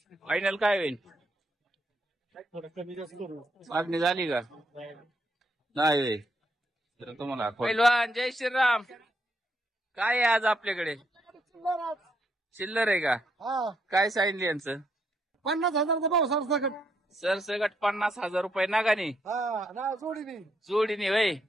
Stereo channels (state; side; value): normal; both; correlation 0.76